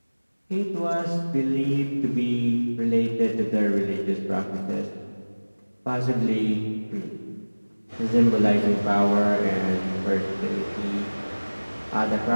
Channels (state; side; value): inverted; both; correlation -1.00